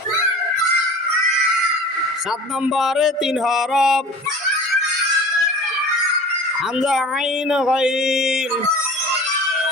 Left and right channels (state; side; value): normal; both; correlation 0.40